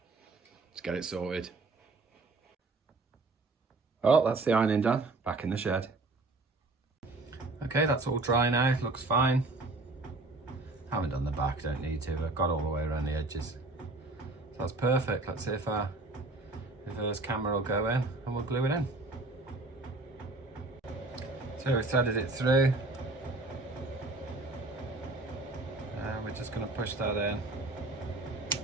Let's get it sorted. Well, that's the ironing done, back in the shed. Okay, that's all dry now, looks fine. Haven't done the back, don't need to, I've got all the way around the edges. So that's perfect. Let's see if our reverse camera will go in and we'll glue it in. So we've threaded it through. And we're just going to push that in.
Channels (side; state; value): left; quieter; 3.2 dB